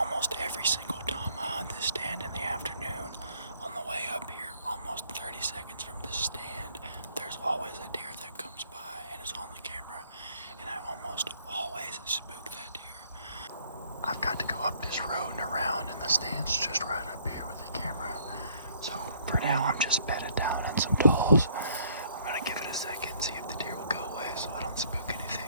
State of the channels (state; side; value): inverted; both; correlation -0.63